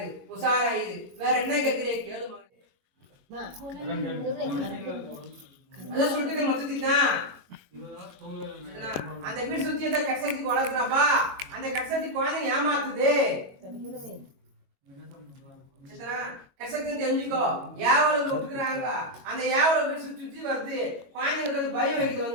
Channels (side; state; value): left; late; 22 ms